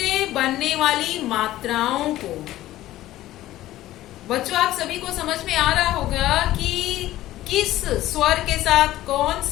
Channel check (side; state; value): right; quieter; 15.1 dB